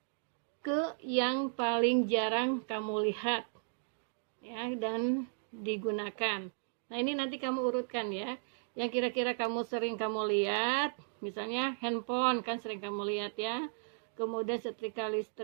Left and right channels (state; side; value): silent; left; digital silence